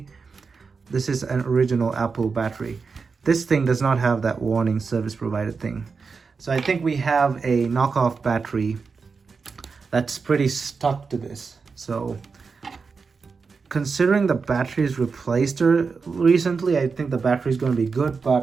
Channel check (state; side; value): quieter; left; 5.0 dB